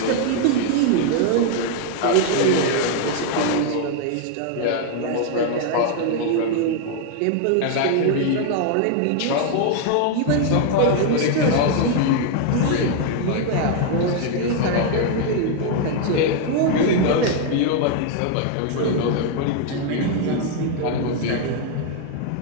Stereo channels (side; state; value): both; different; correlation 0.00